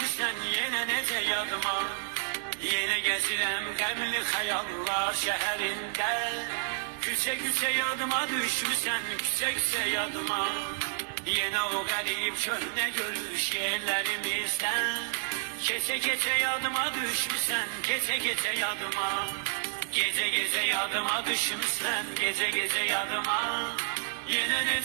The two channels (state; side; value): silent; left; digital silence